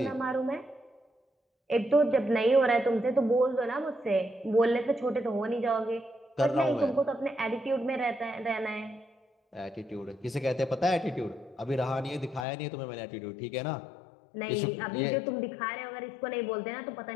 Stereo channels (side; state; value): right; drops out; at 12.5 s